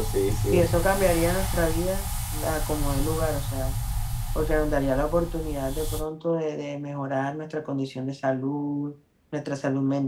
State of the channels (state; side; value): identical; both; correlation 1.00